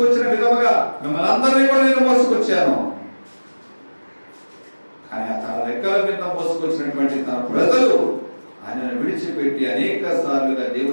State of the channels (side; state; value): both; inverted; correlation -1.00